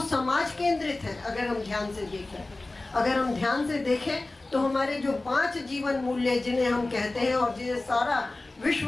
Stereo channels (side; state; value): right; quieter; 3.0 dB